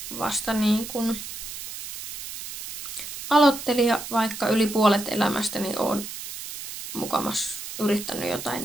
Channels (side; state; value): right; noise; hiss, 10 dB below the sound